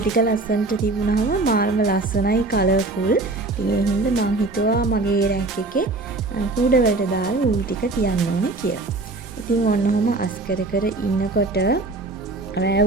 ලස්සනට තිබුණාම මාරම ලස්සනයි කලර්ෆුල්. ඉතින් ඒ හින්දා මං හිතුවා මගේ රැක් එකේ කූඩ වලට දාලා වූල් ටික තියන්න ඕනේ කියලා. ඉතින් ඔන්නෝම අස් කර ඉන්නකොට රෑ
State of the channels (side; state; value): left; quieter; 3.2 dB